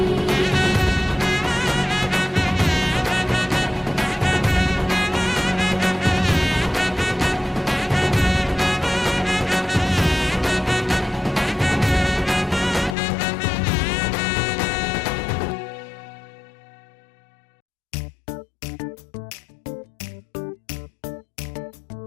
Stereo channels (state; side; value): drops out; right; at 13.0 s